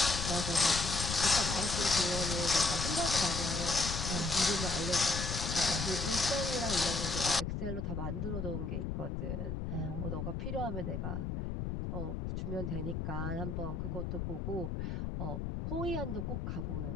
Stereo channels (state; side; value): noise; left; rumble, 3 dB below the sound